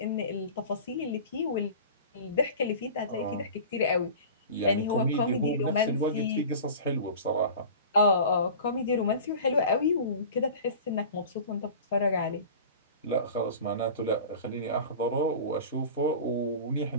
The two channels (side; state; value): both; inverted; correlation -0.37